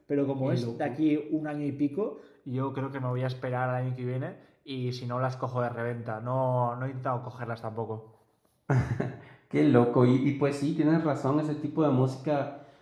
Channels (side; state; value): both; identical; correlation 1.00